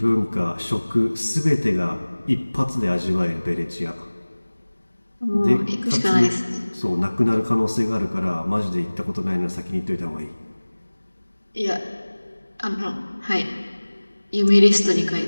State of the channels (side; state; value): both; inverted; correlation -1.00